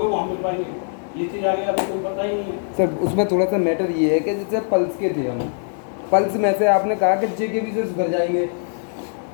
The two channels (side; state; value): right; silent; digital silence